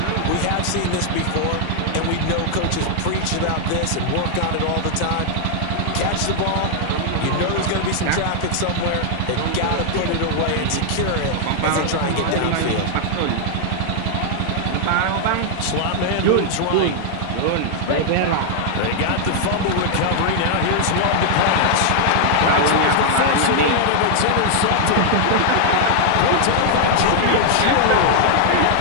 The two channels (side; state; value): both; different; correlation -0.01